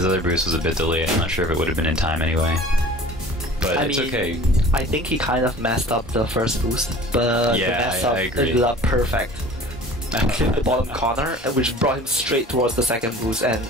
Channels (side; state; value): both; normal; correlation 0.44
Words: other boost was a bit delayed. I'm not sure if it would have been in time anyway. But it's okay. I think he kind of messed up the first boost. But yeah, the mess up ended up perfect. Clipped the bottom corner, which brought him straight towards the second boost. And